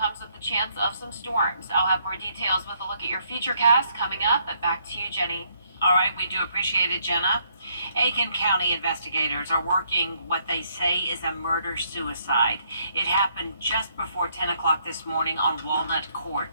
with the chance of some storms. I'll have more details with a look at your futurecast coming up, but back to you, Jenny. All right, we do appreciate it, Jenna. Aiken County investigators are working what they say is a murder-suicide. It happened just before 10 o'clock this morning on Walnut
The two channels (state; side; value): inverted; both; correlation -0.70